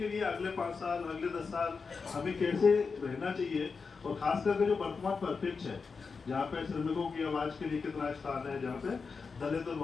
लिए अगले 5 साल अगले 10 साल हमें कैसे रहना चाहिए, और खास करके जो वर्तमान परिप्रेक्ष्य है जहाँ पे श्रमिकों की आवाज के लिए कितना स्थान है, जहाँ पे दलित और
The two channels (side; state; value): right; quieter; 5.0 dB